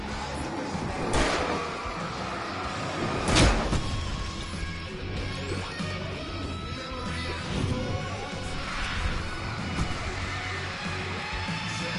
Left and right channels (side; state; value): both; identical; correlation 1.00